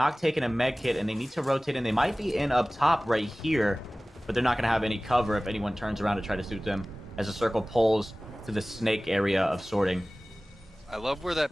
taking a med kit, and they need to rotate in. They might be in up top right here, but they're not going to have any cover if anyone turns around to try to shoot them as the circle pulls to the snake area of sorting. I love where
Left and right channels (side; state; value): both; normal; correlation 0.98